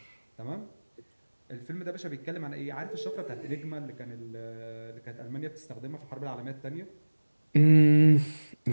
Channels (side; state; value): both; inverted; correlation -1.00